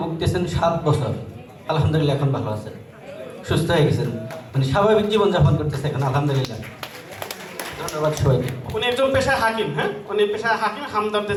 ভুগতেছেন 7 বছর। আলহামদুলিল্লাহ এখন ভালো আছেন, সুস্থ হয়ে গেছেন, উনি স্বাভাবিক জীবনযাপন করতেছে এখন আলহামদুলিল্লাহ। ধন্যবাদ সবাইকে। উনি একজন পেশায় হাকিম। হ্যাঁ, উনি পেশায় হাকিম, হামদর্দে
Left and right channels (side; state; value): both; identical; correlation 1.00